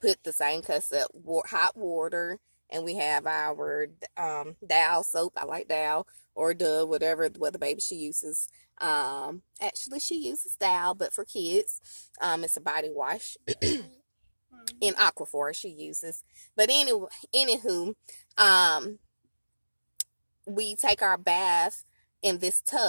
put the same cup of hot water, and we have our Dow soap. I like Dow or Dove, whatever what the baby she uses. Actually she uses Dow, but for kids, it's a body wash. In Aquaphor she uses. But anyway, anywho, we take our bath in this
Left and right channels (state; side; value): inverted; both; correlation -1.00